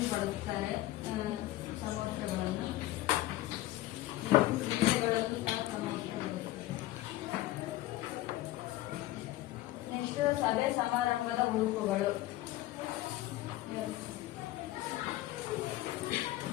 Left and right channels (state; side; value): quieter; right; 16.3 dB